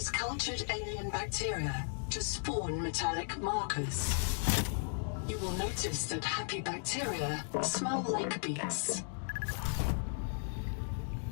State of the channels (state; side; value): silent; right; 54 dB below the other